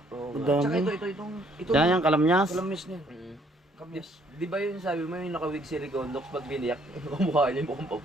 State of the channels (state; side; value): normal; both; correlation 0.65